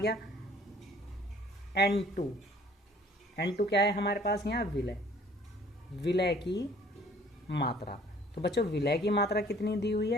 N2 क्या है हमारे पास यहाँ विलय की मात्रा। तो बच्चों विलय की मात्रा कितनी दी हुई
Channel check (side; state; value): both; normal; correlation 0.55